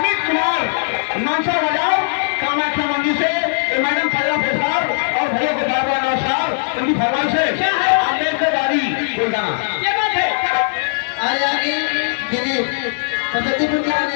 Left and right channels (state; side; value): silent; right; digital silence